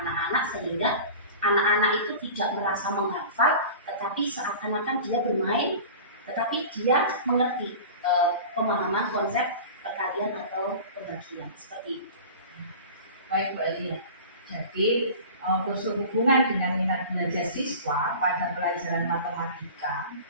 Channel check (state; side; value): inverted; both; correlation -0.36